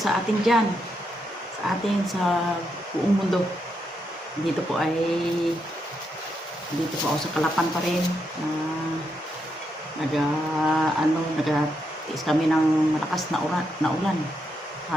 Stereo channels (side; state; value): both; normal; correlation 0.81